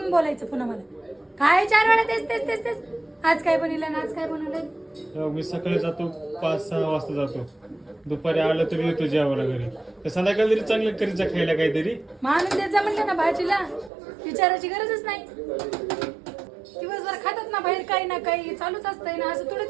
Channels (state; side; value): drops out; left; at 13.9 s